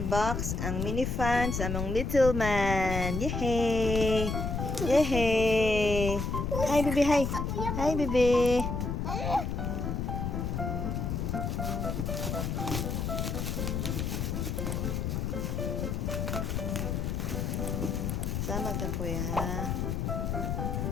ang mini fan sa among little man. Yehey! Yehey! Hi, baby, hi! Hi, baby! Sama ka, kuya, ha?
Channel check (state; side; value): noise; left; rumble, 1 dB below the sound